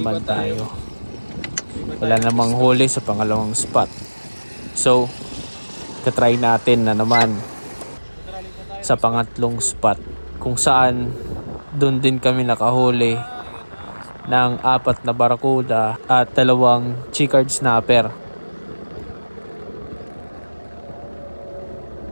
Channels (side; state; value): both; inverted; correlation -1.00